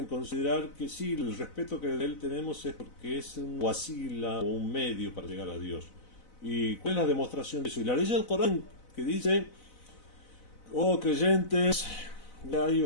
considerar que sí, el respeto que de él tenemos es porque es un wasila o un medio para llegar a Dios. ¿Y cuál es la demostración de eso? Y la ley del Corán que dice: oh creyentes, ya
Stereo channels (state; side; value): late; right; 4.0 ms